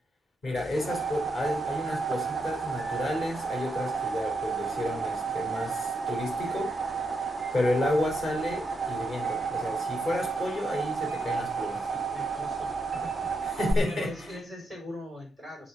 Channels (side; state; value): both; normal; correlation 0.82